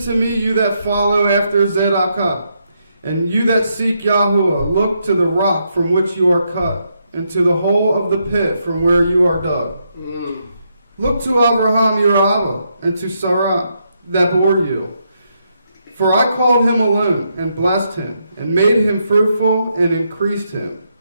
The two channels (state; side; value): inverted; both; correlation -0.79